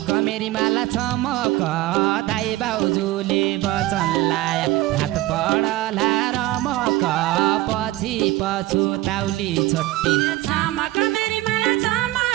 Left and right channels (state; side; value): quieter; left; 16.9 dB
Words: मेरी माला चमक दाइ बाउजूले वचन लाया रात पढला रमक पछि पछुताउली छोटी छमक मेरी माला